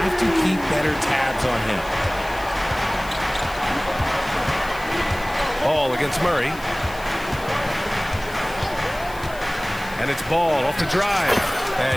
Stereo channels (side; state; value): left; noise; hiss, 18 dB below the sound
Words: to keep better tabs on him. Ball against Murray. And it's Ball off the drive.